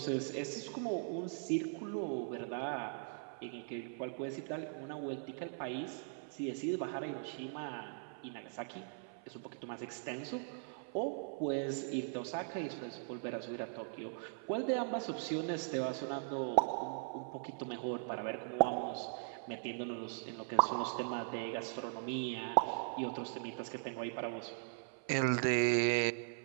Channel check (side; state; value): left; silent; 51 dB below the other